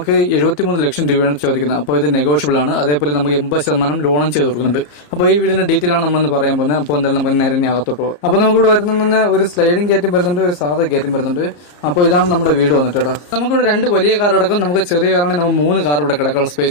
73 ലക്ഷം രൂപയാണ് ചോദിക്കുന്നത്. അപ്പോൾ ഇത് നെഗോഷ്യബിൾ ആണ്. അതേപോലെ നമുക്ക് 80% ലോണും ചെയ്ത് കൊടുക്കുന്നുണ്ട്. അപ്പോൾ ഈ വീടിന്റെ ഡീറ്റെയിൽ ആണ് നമ്മളൊന്ന് പറയാൻ പോകുന്നത്. അപ്പോൾ എന്തായാലും നമുക്ക് നേരെ അകത്തോട്ട് പോകും. അപ്പോൾ നമുക്ക് ഇവിടെ വരുന്ന ഒരു സ്ലൈഡിംഗ് ഗേറ്റും വരുന്നുണ്ട്, ഒരു സാധാ ഗേറ്റും വരുന്നുണ്ട്. അപ്പോൾ ഇതാണ് നമ്മുടെ വീട് വന്നിട്ട് കേട്ടോ. നമുക്കിവിടെ 2 വലിയ കാർ അടക്കം, നമുക്ക് ചെറിയ കാറാണെങ്കിൽ നമുക്ക് 3 കാർ ഇവിടെ കിടക്കാനുള്ള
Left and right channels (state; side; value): late; right; 34 ms